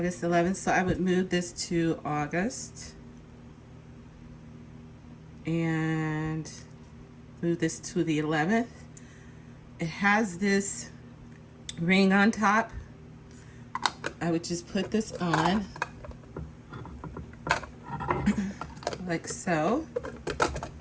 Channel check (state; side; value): identical; both; correlation 1.00